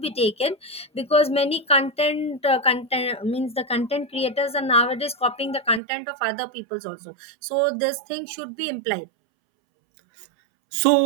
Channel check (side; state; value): left; drops out; at 5.8 s